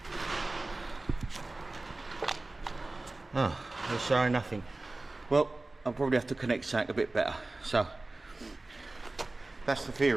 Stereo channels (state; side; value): quieter; left; 3.0 dB